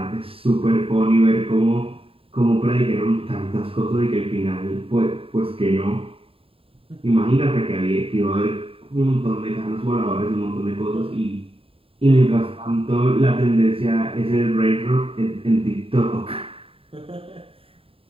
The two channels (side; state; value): left; late; 0.27 ms